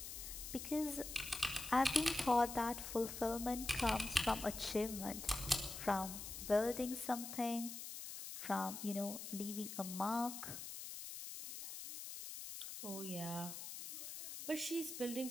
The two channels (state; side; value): noise; left; hiss, 8 dB below the sound